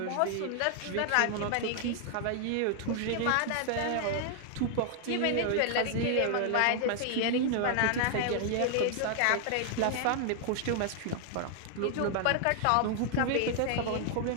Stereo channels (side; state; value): both; different; correlation 0.00